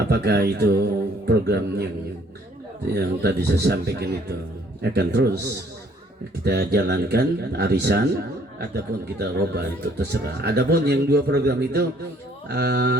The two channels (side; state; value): both; normal; correlation 0.61